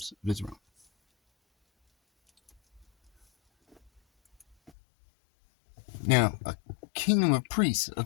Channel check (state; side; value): drops out; right; at 4.7 s